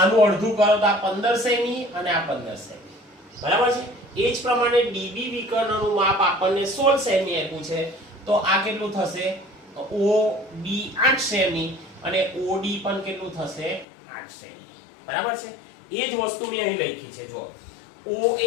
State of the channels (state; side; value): drops out; right; at 13.9 s